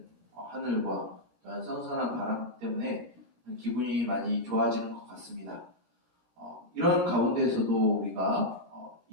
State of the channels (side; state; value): left; late; 13 ms